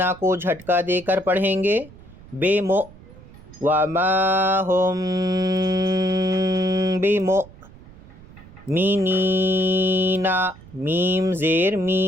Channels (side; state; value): right; noise; rumble, 21 dB below the sound